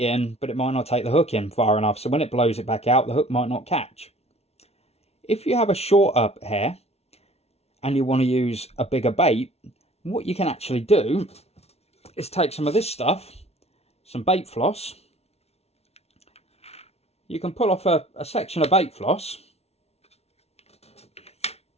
but it might not take the hook in far enough. So when it blows it back out, the hook might not catch. If you have a shorter hair and you want to use a bigger bait, what you can actually do is take some of this stuff, some bait floss. You can pull off a section of bait floss.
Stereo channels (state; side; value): late; right; 0.31 ms